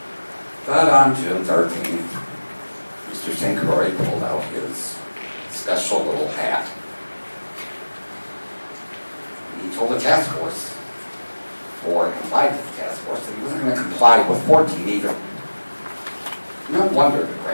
But on June 13th, Mr. St. Croix pulled out his special little hat. And he told the task force, or complied with the task force, that he wasn't going to comply with 14 either. No wonder the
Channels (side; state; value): both; inverted; correlation -1.00